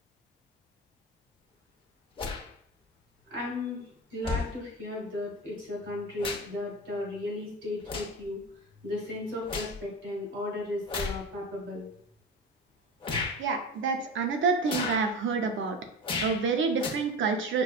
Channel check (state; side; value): normal; both; correlation 0.27